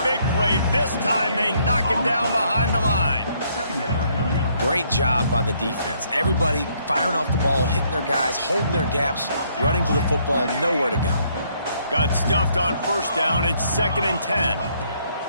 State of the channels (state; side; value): inverted; both; correlation -0.69